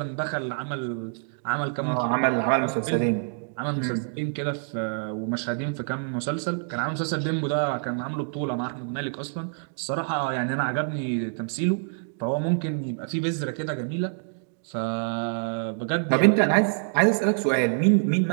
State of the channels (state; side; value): silent; left; digital silence